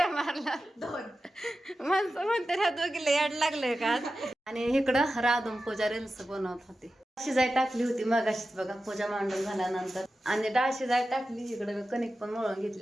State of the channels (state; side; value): normal; both; correlation 0.93